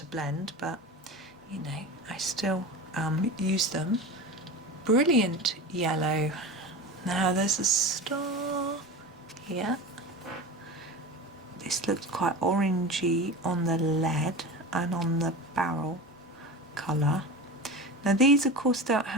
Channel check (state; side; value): normal; both; correlation 0.29